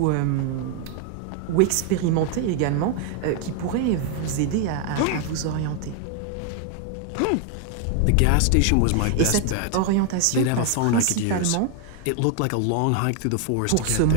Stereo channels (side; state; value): both; different; correlation 0.00